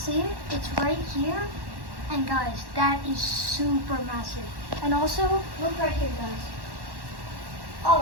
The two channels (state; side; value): late; left; 1.1 ms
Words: it, it's right here. And guys, that is super massive. And also, look right here, guys.